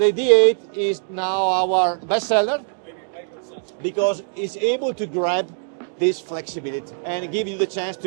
D8 is now our best seller because it's able to grab this flexibility and give you the chance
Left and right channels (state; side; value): silent; left; digital silence